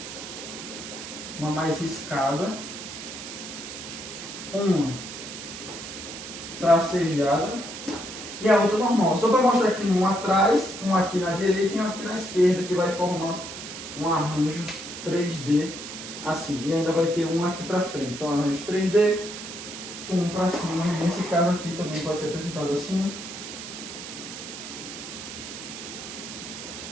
uma mais riscada, uma tracejada e a outra normal. Só para mostrar que tem um atrás, um aqui na direita e um aqui na esquerda, que vai formar um arranjo 3D assim. E ainda vai ter um aqui para frente. Então, arranjo 3D, um para cima. Nesse caso aqui também pode ser representado assim.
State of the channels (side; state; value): right; noise; hiss, 10 dB below the sound